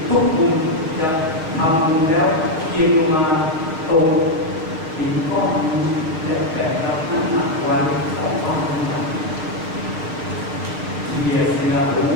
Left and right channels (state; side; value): late; left; 6.4 ms